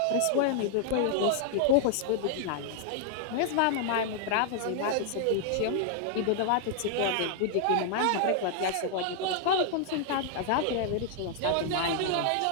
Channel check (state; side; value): different; both; correlation -0.01